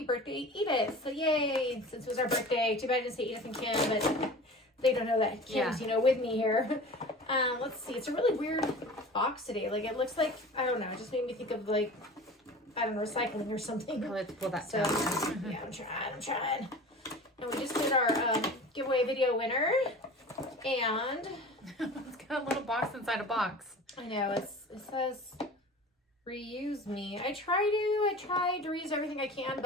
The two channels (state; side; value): normal; both; correlation 0.38